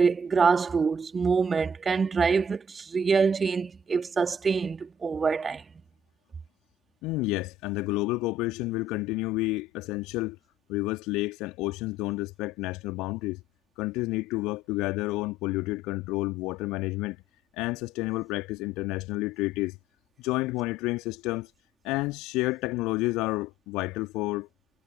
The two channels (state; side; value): normal; both; correlation 0.54